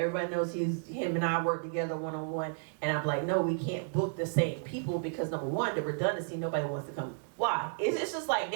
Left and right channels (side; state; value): left; silent; digital silence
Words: knows him and I work together one-on-one. And I'm like, no, we can't book the same people because number one, the redundancy, nobody wants to come. Why? It's just like